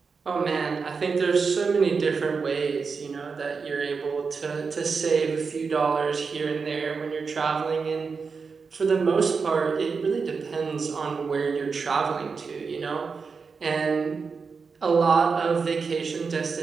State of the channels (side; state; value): left; quieter; 5.1 dB